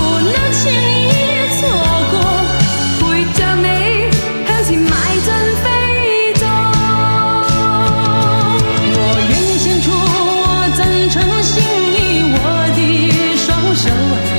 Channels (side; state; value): both; inverted; correlation -1.00